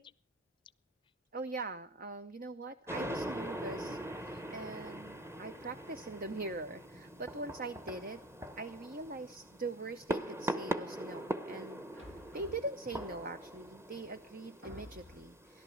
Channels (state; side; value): normal; both; correlation 0.38